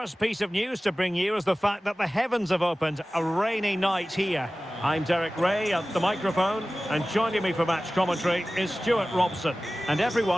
piece of news to bring you is the fact that the heavens have opened. A rainy night here. I'm Derek Ray at the microphone, and joining me for match commentary is Stuart Robson. And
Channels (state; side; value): normal; both; correlation 0.97